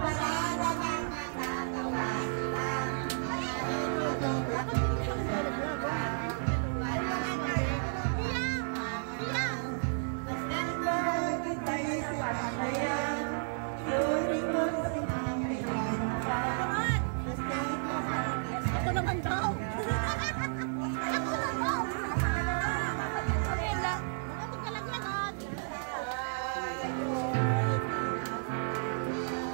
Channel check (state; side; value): silent; left; digital silence